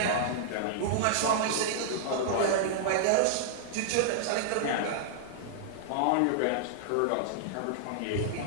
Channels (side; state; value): both; different; correlation -0.01